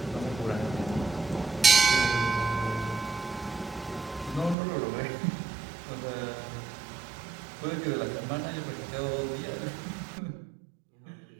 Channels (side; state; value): left; drops out; at 4.5 s